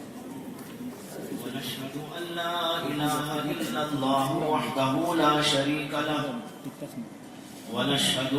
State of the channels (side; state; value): both; identical; correlation 1.00